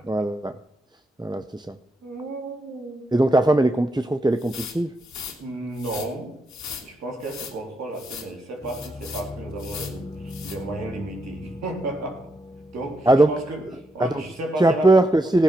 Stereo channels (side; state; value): both; normal; correlation 0.81